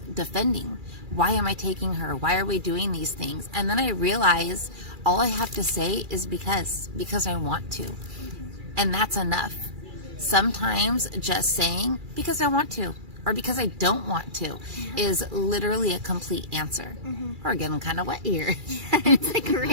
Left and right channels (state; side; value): late; left; 2.3 ms